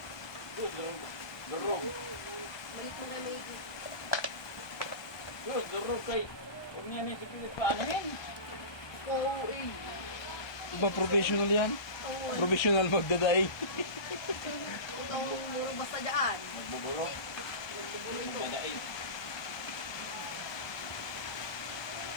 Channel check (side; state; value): right; late; 1.2 ms